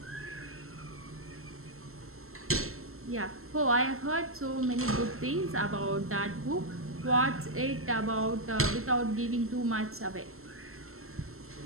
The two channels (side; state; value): left; late; 0.62 ms